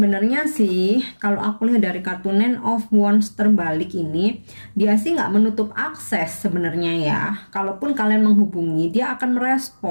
sih kalau aku lihat dari kartu Nine of Wands terbalik ini, dia sih nggak menutup akses sebenarnya ya. Kalaupun kalian menghubungi, dia akan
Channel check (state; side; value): inverted; both; correlation -1.00